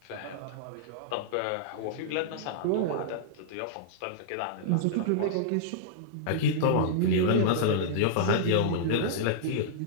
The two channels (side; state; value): both; different; correlation -0.02